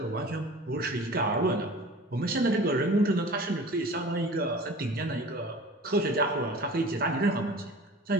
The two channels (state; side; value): normal; both; correlation 0.41